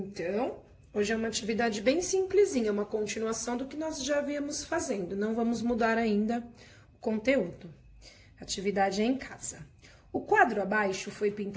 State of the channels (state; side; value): identical; both; correlation 1.00